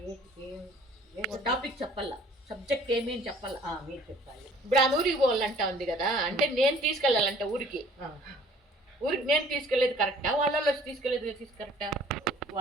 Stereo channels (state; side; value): normal; both; correlation 0.54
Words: టాపిక్ చెప్పాలా, సబ్జెక్ట్ ఏమి అని చెప్పాలా? మీరు చెప్పాలి. ఇప్పుడు ఆ ఊరికి పోవాలంటా ఉంది కదా, అంటే నేను తీసుకెళ్ళాలంట ఊరికి నేను తీసుకెళ్ళేది కరెక్టా? వాళ్ళలో వచ్చి తీసుకెళ్ళేది కరెక్టా?